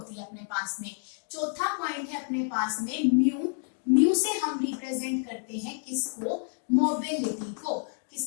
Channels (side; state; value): right; silent; 59 dB below the other